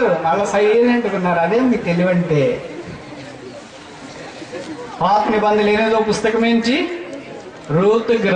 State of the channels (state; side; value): identical; both; correlation 1.00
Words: అలా సైలెంట్ ఉన్నారు. అదే మీకు తెలివంటే. పాత నిబంధనలు 8వ పుస్తకం ఏంటి? రూతు